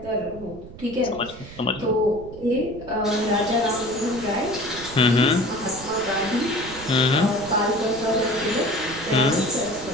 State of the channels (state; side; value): noise; right; rumble, 16 dB below the sound